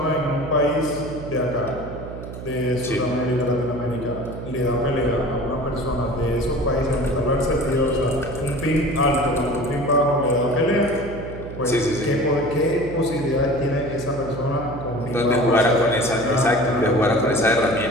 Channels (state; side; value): noise; right; hum, 11 dB below the sound